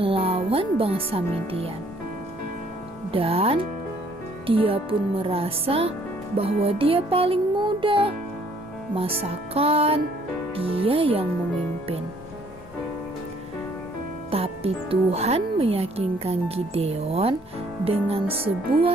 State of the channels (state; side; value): normal; both; correlation 0.62